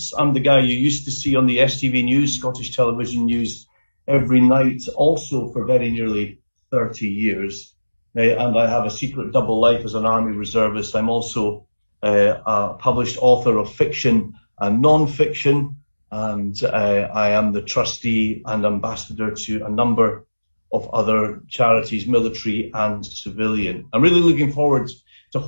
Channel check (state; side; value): inverted; both; correlation -1.00